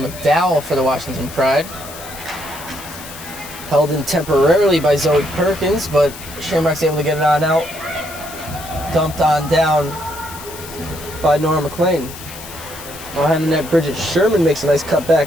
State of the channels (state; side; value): noise; left; hiss, 14 dB below the sound